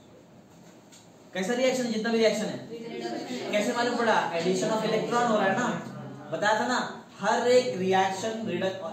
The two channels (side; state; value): both; identical; correlation 1.00